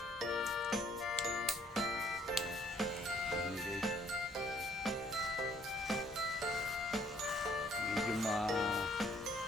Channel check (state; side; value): normal; both; correlation 0.63